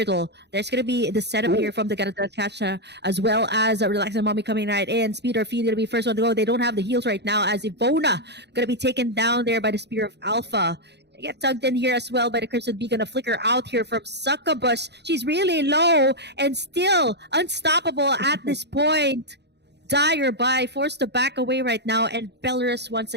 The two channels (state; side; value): late; left; 0.50 ms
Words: There's going to be the setup here from the Kacha, as well as Relax and Mommy coming right in. Speed or Feed going to be first one to go. They don't have the heals right now, as Ivona going to be taken down there by the Spear of Alpha. They get tugged in here as well by the Crimson Beacon. A flicker out here from Succubus. She's really low and still unstoppable at this point. Dire by forced to back away right now, and Belarus once